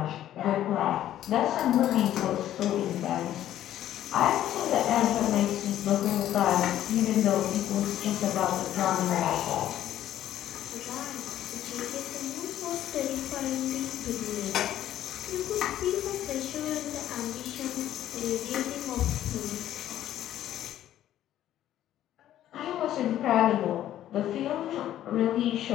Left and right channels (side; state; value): right; quieter; 12.2 dB